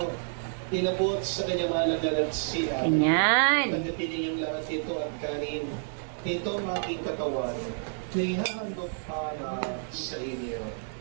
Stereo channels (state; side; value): silent; left; digital silence